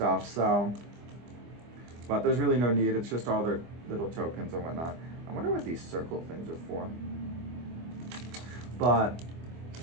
so, but there's really no need. It's just all their little tokens and whatnot. I wonder what these circle things are for. But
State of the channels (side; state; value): left; late; 25 ms